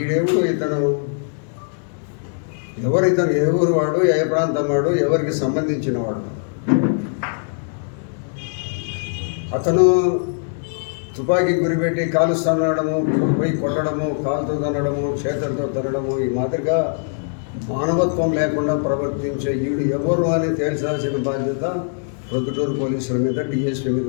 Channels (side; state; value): right; silent; digital silence